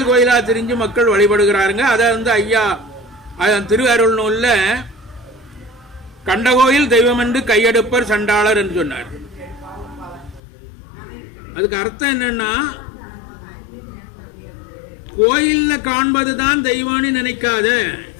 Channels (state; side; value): drops out; right; at 10.4 s